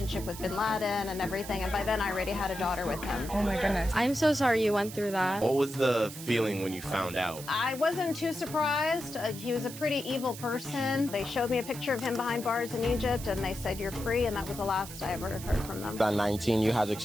with bin Laden and everything. And by then, I already had a daughter with him. Oh my goodness. I'm so sorry you went through that. What was the feeling when you found out? I wasn't too surprised. He was a pretty evil person. They showed me a picture of him behind bars in Egypt and they said, "You're free," and that was the last I ever heard from them. At 19, you had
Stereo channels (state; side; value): noise; right; hiss, 12 dB below the sound